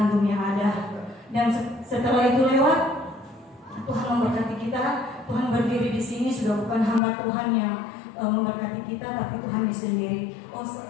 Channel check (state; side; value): drops out; right; at 7.0 s